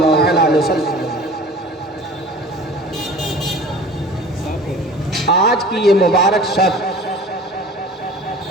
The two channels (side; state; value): both; normal; correlation 0.43